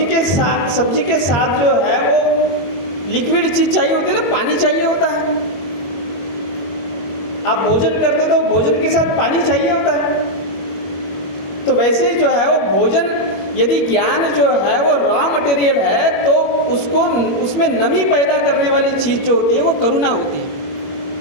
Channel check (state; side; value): late; right; 21 ms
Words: के साथ जो है वो लिक्विड चीज़ चाहिए होती है ना, पानी चाहिए होता है। आप भोजन करते तो भोजन के साथ पानी चाहिए होता है। तो वैसे ही जो है वो भोजन, यदि ज्ञान जो है वो रॉ मटेरियल है, तो उसमें नमी पैदा करने वाली चीज़ जो होती है वो करुणा होती है।